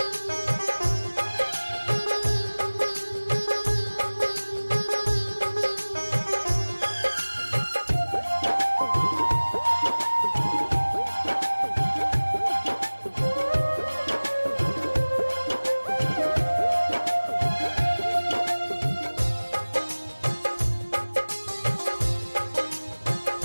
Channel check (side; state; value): both; inverted; correlation -1.00